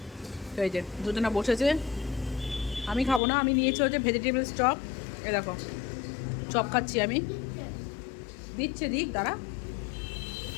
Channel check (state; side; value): drops out; right; at 3.2 s